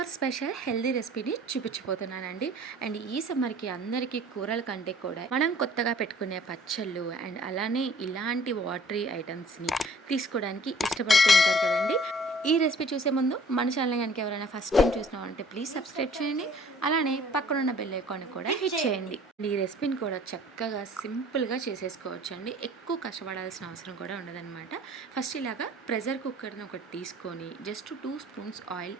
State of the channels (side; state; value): both; normal; correlation 0.52